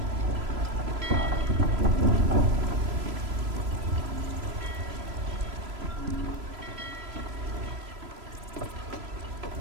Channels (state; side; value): late; left; 3.0 ms